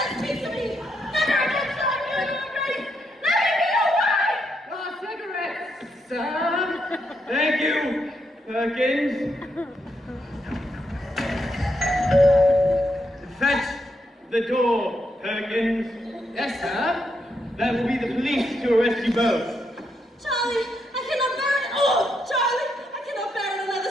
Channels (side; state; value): both; normal; correlation 0.80